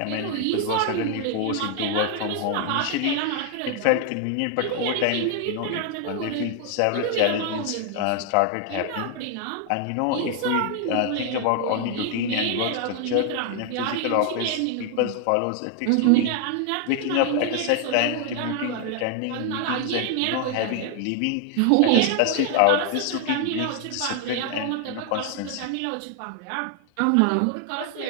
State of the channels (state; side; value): different; both; correlation 0.00